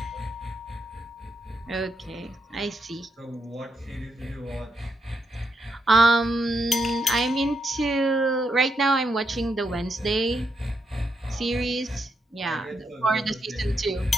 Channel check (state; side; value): normal; both; correlation 0.80